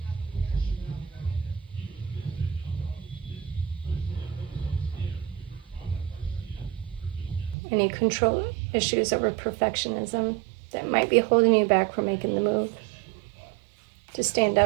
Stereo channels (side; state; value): left; drops out; at 7.6 s